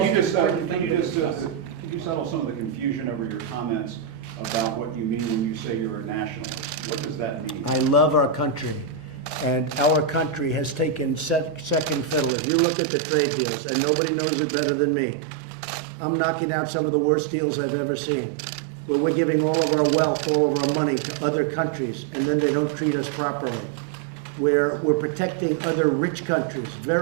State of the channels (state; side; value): drops out; left; at 12.3 s